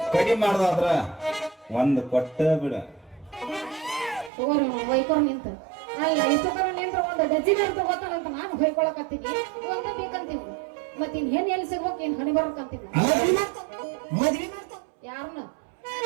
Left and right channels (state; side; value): drops out; left; at 4.3 s